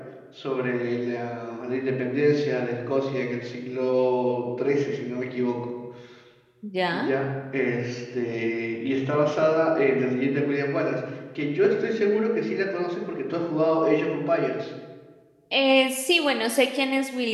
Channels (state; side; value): identical; both; correlation 1.00